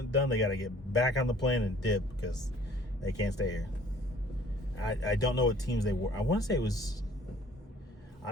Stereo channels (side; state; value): both; normal; correlation 0.54